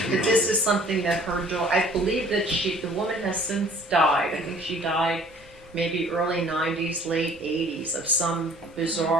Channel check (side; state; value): both; normal; correlation 0.54